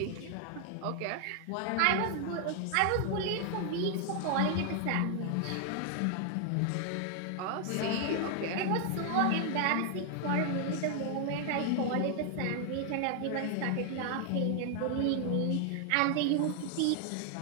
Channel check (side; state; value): both; different; correlation 0.00